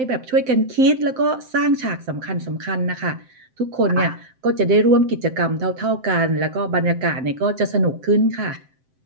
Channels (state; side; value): late; left; 7.6 ms